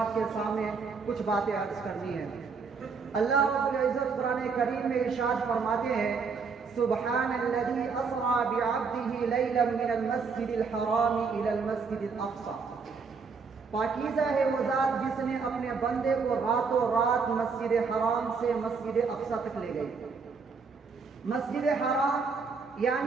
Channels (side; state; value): left; quieter; 5.1 dB